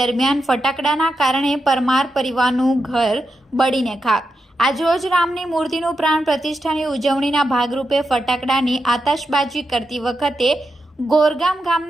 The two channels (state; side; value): normal; both; correlation 0.87